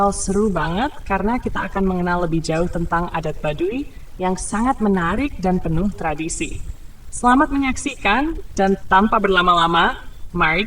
seru banget karena kita akan mengenal lebih jauh tentang adat Baduy yang sangat menarik dan penuh tradisi. Selamat menyaksikan dan tanpa berlama-lama, mari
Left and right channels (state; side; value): identical; both; correlation 1.00